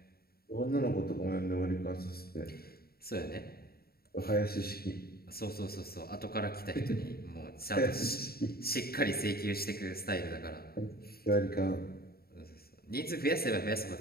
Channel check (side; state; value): right; late; 0.45 ms